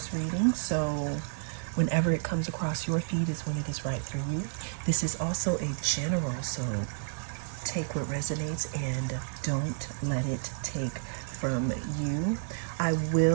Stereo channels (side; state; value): left; silent; digital silence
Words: reading, so whenever it comes across your feed is when it is right for you. This is also a general, so take what resonates and don't let it take from you. I